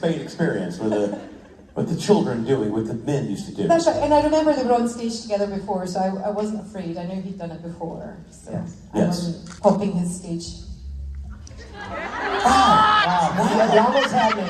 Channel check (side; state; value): both; identical; correlation 1.00